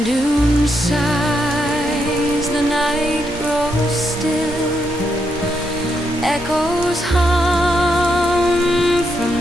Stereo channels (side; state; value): both; normal; correlation 0.80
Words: dune sighs, the night grows still. Echoes hum